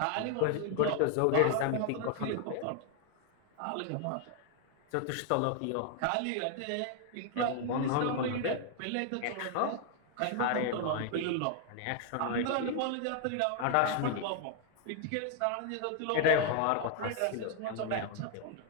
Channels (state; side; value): different; both; correlation 0.00